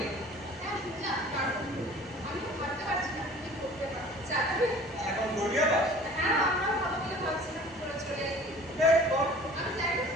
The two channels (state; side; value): normal; both; correlation 0.47